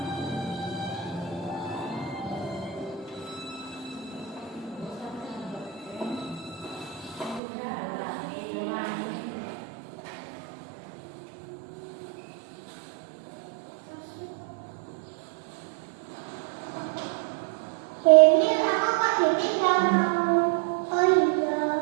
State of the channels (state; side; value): drops out; left; at 7.4 s